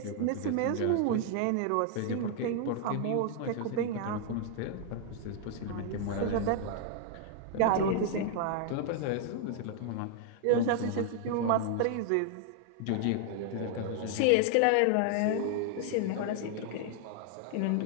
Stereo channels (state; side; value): different; both; correlation 0.00